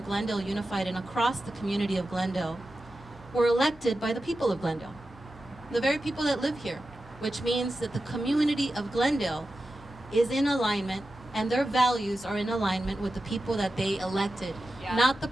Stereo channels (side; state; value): both; normal; correlation 0.92